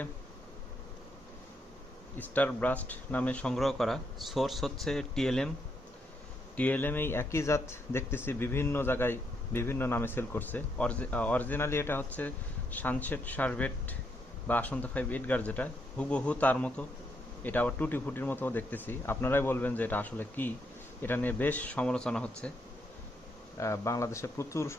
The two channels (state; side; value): normal; both; correlation 0.77